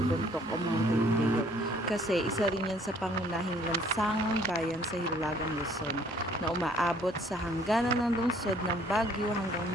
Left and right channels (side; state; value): both; normal; correlation 0.60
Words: Bontoc o Mountain Trail. Kasi isa rin yan sa pangunahing lansangang bayan sa Hilagang Luzon na umaabot sa hangganan ng lungsod ng Baguio hanggang